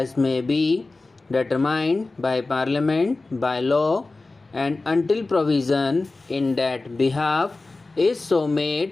may be determined by Parliament by law, and until provision in that behalf is so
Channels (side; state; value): right; quieter; 3.4 dB